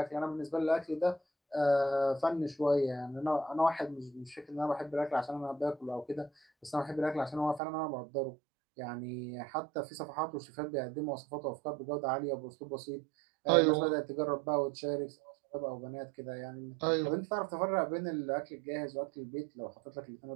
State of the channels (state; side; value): drops out; left; at 7.6 s